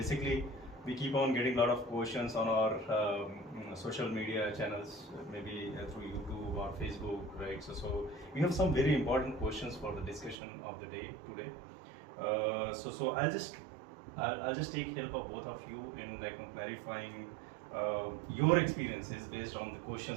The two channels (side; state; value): left; drops out; at 10.4 s